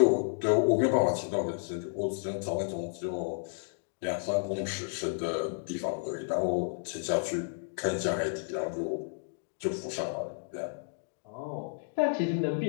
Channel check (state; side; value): silent; right; digital silence